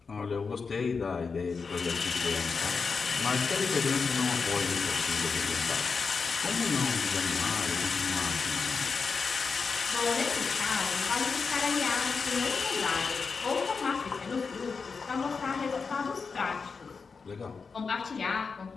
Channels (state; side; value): quieter; right; 5.0 dB